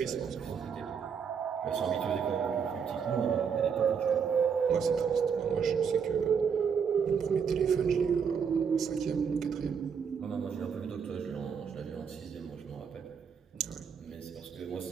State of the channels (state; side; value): quieter; left; 6.7 dB